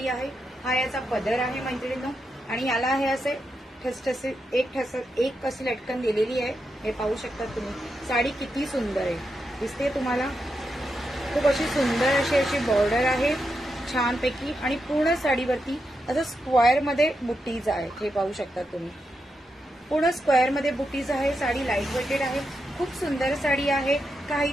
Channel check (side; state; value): both; normal; correlation 0.85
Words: आहे. हा याचा पदर आहे मैत्रिणींनो, आणि याला हे असे ठसठसे एक अशी लटकन दिलेली आहे. हे पाहू शकता तुम्ही. साडी किती सुंदर आहे दिसते तुम्हाला. खूप अशी सुंदर अशी बॉर्डर आहे छानपैकी, आणि पूर्ण साडीवरती असं स्क्वेअर मध्ये बुट्टीज आहेत. हे पाहू शकता तुम्ही. पूर्ण स्क्वेअर मध्ये बुटीज आहे. साडी लाईट वेटेड आहे. खूप सुंदर साडी आहे.